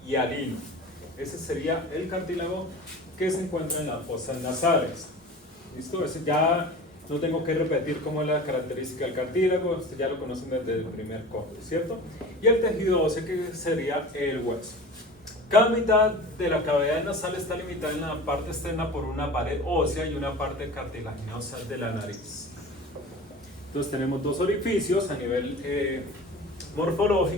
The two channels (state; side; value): normal; both; correlation 0.36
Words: y alino. Ese sería el cartílago que se encuentra en las fosas nasales. ¿Listo? Ese ya no tengo que repetir cómo es la característica del cartílago, esto ya lo conocen desde el primer corte, ¿cierto? Y el tejido óseo, que sería el hueso. Cada mitad de la cavidad nasal está limitada en la parte externa por una pared ósea y una parte cartilaginosa de la nariz. Entonces tenemos dos orificios a nivel